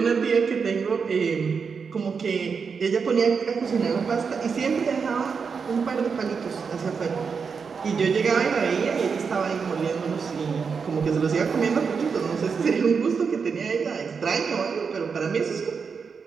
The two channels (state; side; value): quieter; left; 5.7 dB